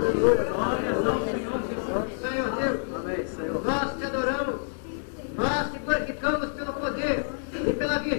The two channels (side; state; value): right; silent; digital silence